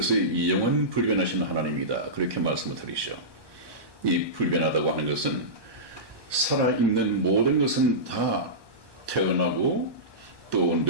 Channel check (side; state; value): left; late; 1.2 ms